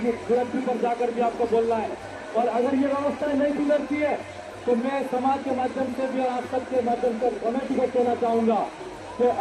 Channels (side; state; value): both; identical; correlation 1.00